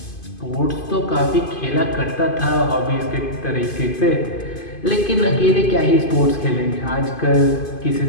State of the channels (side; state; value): right; late; 2.5 ms